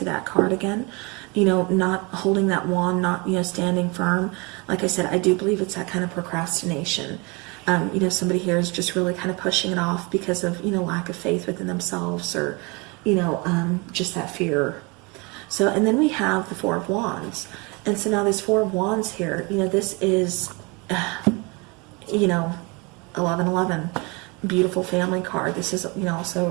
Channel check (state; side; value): quieter; left; 28.3 dB